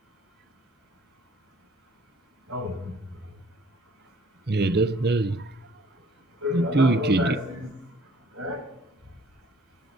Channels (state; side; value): normal; both; correlation 0.57